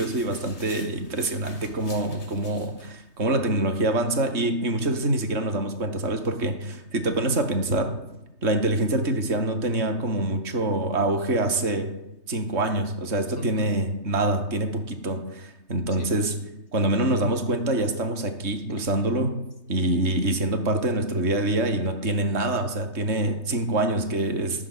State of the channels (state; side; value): late; left; 3.2 ms